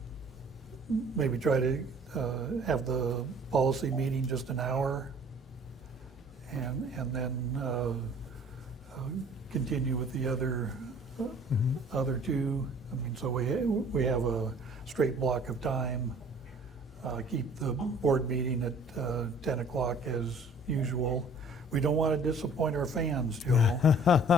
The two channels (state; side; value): normal; both; correlation 0.52